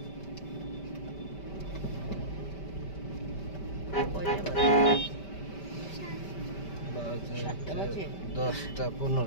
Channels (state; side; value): late; right; 5.1 ms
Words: কয়টা বাজে? সাতটা বাজে? 10টা